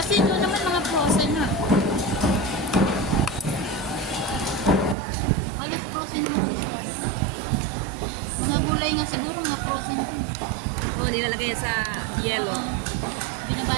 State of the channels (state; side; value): drops out; left; at 5.0 s